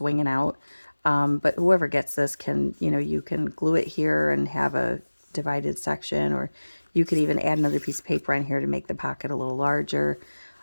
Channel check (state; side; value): inverted; both; correlation -1.00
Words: out. But whoever gets this can, you can glue it here and have a divided section, or you could even add another piece of paper on here to make the pocket a little larger.